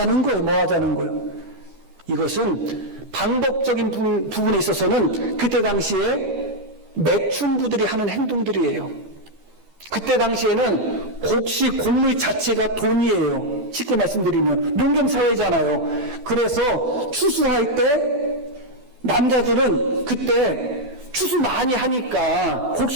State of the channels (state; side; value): late; left; 12 ms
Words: 거예요? 이것은 방법적인 부분에 있어서는 그때 당시에 매춘부들이 하는 행동들이에요. 그때 당시에는 곡식 곡물 자체가 돈이에요. 쉽게 말씀드리면 농경사회잖아요. 그래서 추수할 때 남자들은 그때 추수 많이 하니까